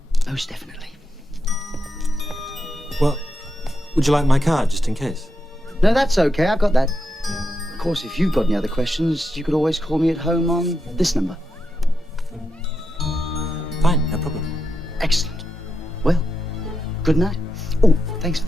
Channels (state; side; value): normal; both; correlation 0.86